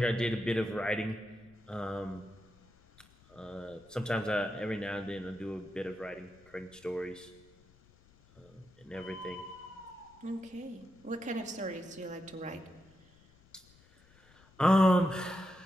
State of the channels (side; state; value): left; noise; rumble, 27 dB below the sound